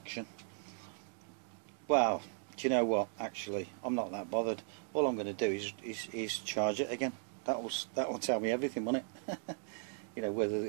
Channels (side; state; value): left; silent; digital silence